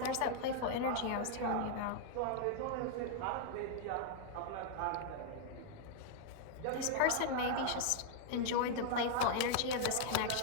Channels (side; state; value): both; different; correlation -0.01